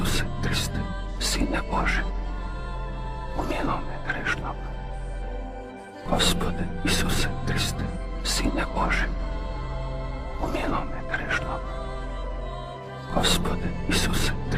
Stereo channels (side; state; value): both; identical; correlation 1.00